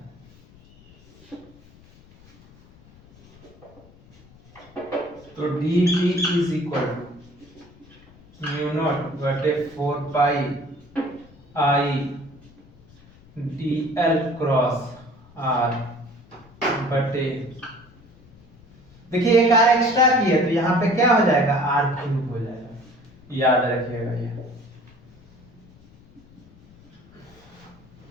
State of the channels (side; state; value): left; noise; rumble, 25 dB below the sound